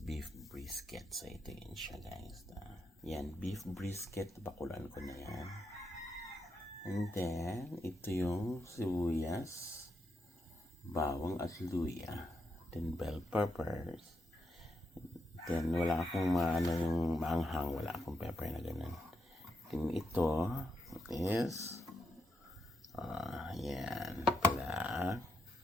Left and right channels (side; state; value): both; normal; correlation 0.82